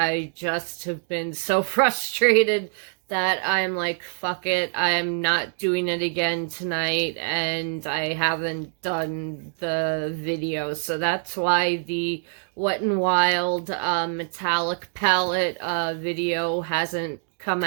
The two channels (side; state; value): left; silent; 62 dB below the other